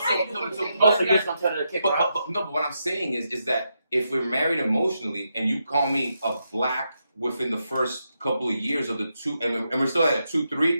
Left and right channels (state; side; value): inverted; both; correlation -0.83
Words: you're just gonna tell her to kick her out. But what I'm saying is that if we're married emotionally and you call me a black within the first couple of years of the 2, and we're still at a